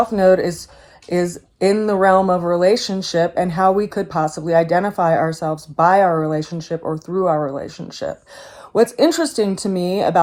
Node is in the realm of relationship and how we could possibly identify ourselves by our relationship or through our relationship. What's interesting to me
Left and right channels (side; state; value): both; identical; correlation 1.00